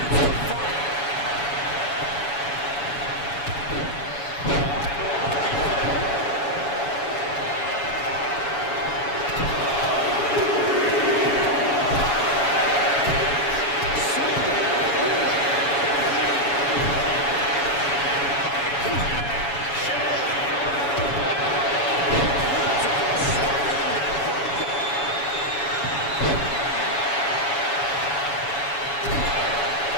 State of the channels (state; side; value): late; right; 7.1 ms